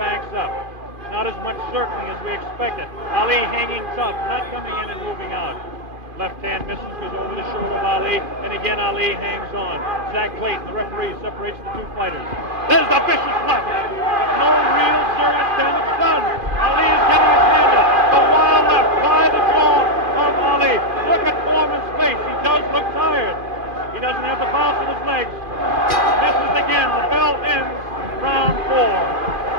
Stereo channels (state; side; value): late; left; 2.5 ms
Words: up. Not as much circling as we expected. Ali hanging tough, not coming in and moving out. Left hand misses, goes over the shoulder of Ali, and again Ali hangs on. Zach Clayton, the referee, separates the two fighters. There's the vicious left. No real serious damage done. Ali is getting his hand up. The wild left by the jaw of Ali. Look at Foreman's face. He does look tired. He doesn't have the bounce in his legs. Misses again. The bell ends round 4.